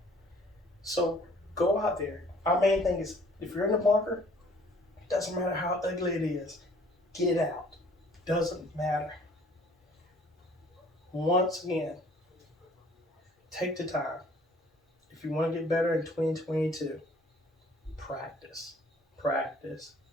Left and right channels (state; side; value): normal; both; correlation 0.56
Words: So go out there. Our main thing is if you're in the bunker, it doesn't matter how ugly it is, get it out. Doesn't matter. Once again, take the time. If you want to get better in 2022, practice, practice,